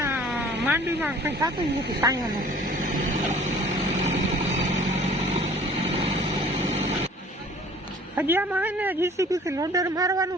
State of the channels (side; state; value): both; normal; correlation 0.51